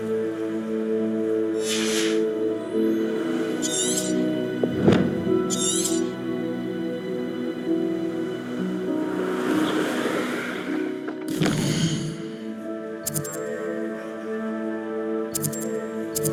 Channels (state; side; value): identical; both; correlation 1.00